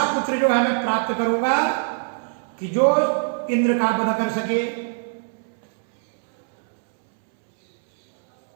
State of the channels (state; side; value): silent; left; 62 dB below the other